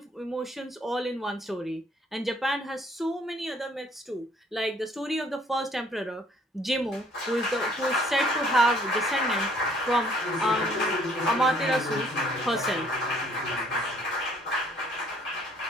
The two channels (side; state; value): both; normal; correlation 0.61